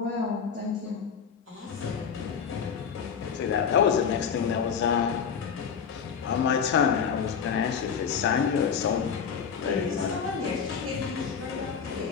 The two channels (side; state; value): right; quieter; 6.8 dB